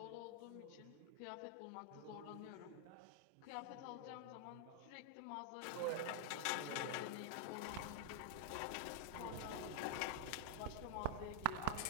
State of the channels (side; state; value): both; different; correlation -0.01